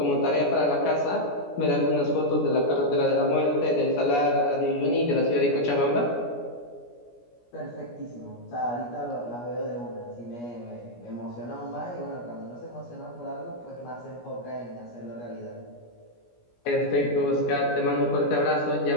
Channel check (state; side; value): late; right; 17 ms